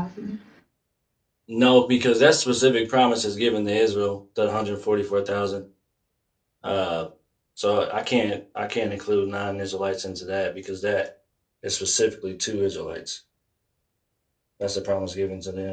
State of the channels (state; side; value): identical; both; correlation 1.00